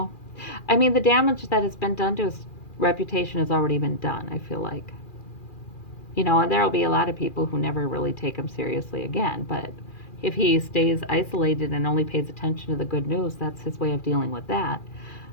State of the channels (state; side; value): late; right; 2.4 ms